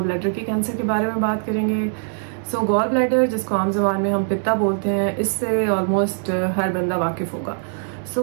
ब्लैडर के कैंसर के बारे में बात करेंगे। सो गॉल ब्लैडर, जिसको आम ज़बान में हम पित्ता बोलते हैं, इससे ऑलमोस्ट हर बंदा वाकिफ़ होगा। सो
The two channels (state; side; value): silent; left; digital silence